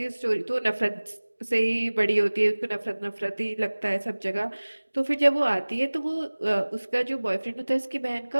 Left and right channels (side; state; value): both; inverted; correlation -1.00